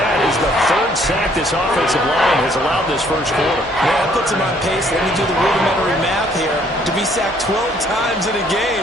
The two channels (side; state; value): left; noise; hum, 26 dB below the sound